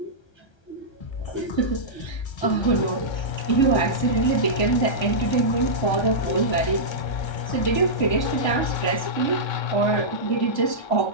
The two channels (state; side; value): late; right; 1.3 ms